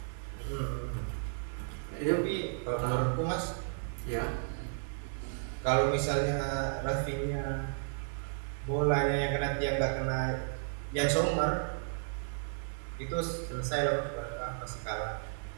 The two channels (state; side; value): silent; left; 55 dB below the other